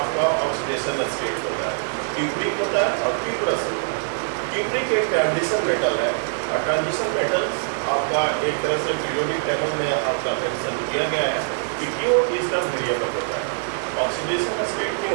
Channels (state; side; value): silent; left; digital silence